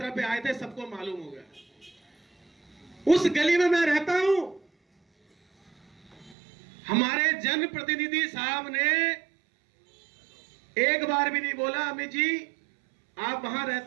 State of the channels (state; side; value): drops out; left; at 6.4 s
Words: पे आए थे, सबको मालूम हो गया। उस गली में मैं रहता हूं, हमारे जनप्रतिनिधि साहब ने एक बार भी नहीं बोला अमित जी आप वहां